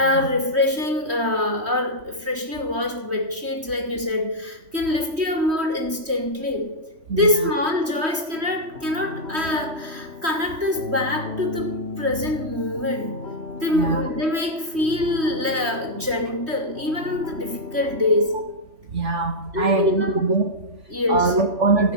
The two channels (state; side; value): late; left; 3.1 ms